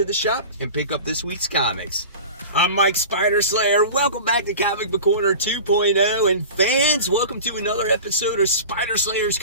the shop and pick up this week's comics. I'm Mike Spider Slayer. Welcome back to Comic Book Corner 2.0, and fans, welcome to another episode of Spider Slayer's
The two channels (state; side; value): inverted; both; correlation -0.35